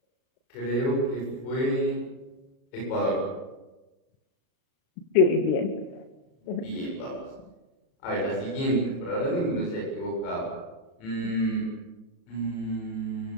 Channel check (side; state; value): right; late; 36 ms